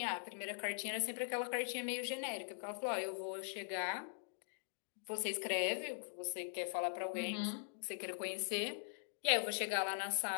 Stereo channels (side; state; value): right; silent; digital silence